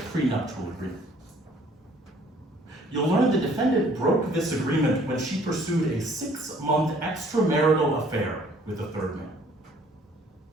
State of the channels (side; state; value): both; normal; correlation 0.58